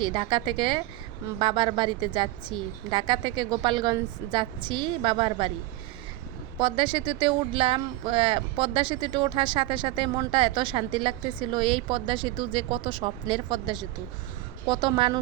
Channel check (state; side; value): quieter; left; 17.2 dB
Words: ঢাকা থেকে বাবার বাড়িতে যাচ্ছি, ঢাকা থেকে গোপালগঞ্জ যাচ্ছি বাবার বাড়ি। পদ্মা সেতুতে উঠলাম, পদ্মা সেতুতে ওঠার সাথে সাথে মনটা এত শান্তি লাগতেছিল। এই পদ্মা সেতু যে কত স্বপ্নের পদ্মা সেতু, কত